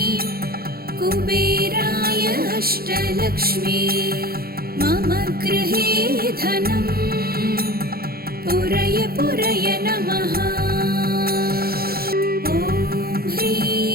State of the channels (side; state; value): left; late; 0.44 ms